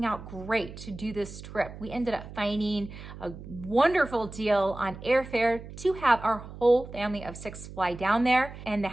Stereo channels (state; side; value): noise; right; hum, 13 dB below the sound